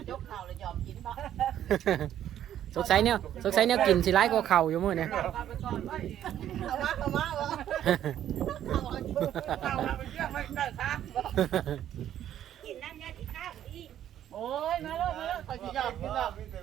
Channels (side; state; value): left; quieter; 11.0 dB